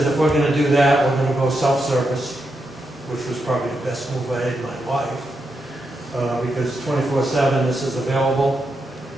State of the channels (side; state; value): both; normal; correlation 0.84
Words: if we're gonna do that, we're gonna go self-service, which was probably the best move I had in my life, because 24/7 this is available.